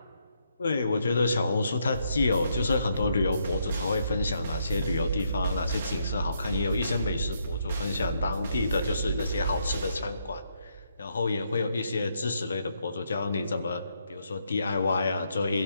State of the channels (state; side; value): inverted; both; correlation -0.76